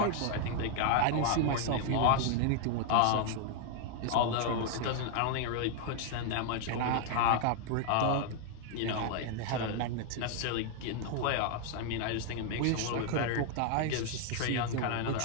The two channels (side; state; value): both; different; correlation 0.00